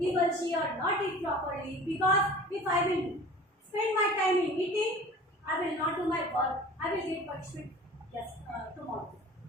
will she or not eat properly. Because if I will spend my time in eating, I will not do my work. I will get punishment tomorrow.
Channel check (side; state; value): both; normal; correlation 0.42